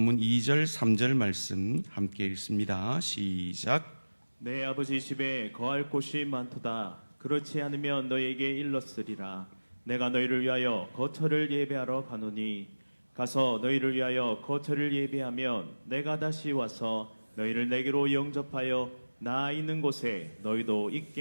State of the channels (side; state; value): both; inverted; correlation -1.00